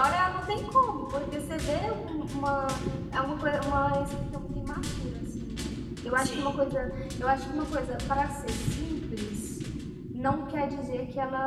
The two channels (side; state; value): both; identical; correlation 1.00